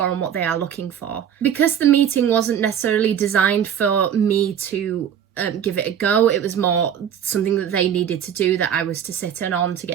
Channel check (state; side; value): quieter; left; 8.9 dB